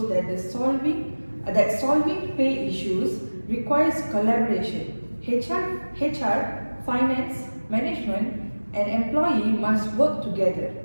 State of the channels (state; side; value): inverted; both; correlation -1.00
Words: that solving pay issues requires collaboration. HR, finance, management, and employee must work together.